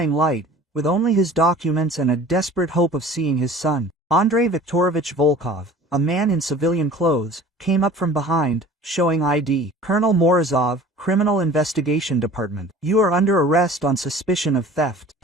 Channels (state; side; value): normal; both; correlation 0.45